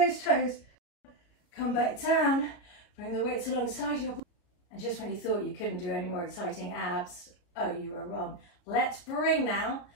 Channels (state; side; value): late; right; 34 ms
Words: toes. Come back down. Bring the weights alongside your body. And just when you thought you couldn't do any more exciting abs, oh, you were wrong. Let's bring now